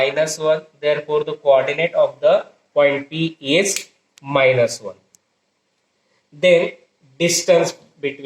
therefore the coordinate of the point P is -1. Then distance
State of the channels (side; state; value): both; identical; correlation 1.00